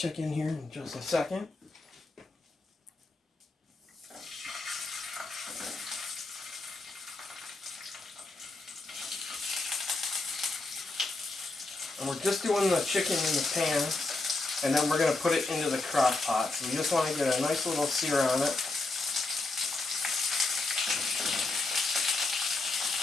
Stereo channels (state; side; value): quieter; right; 3.2 dB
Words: here in just a second. And we're just doing the chicken in the pan, and then we're going to put it into the crock pot. So we just want to get a nice little sear on it.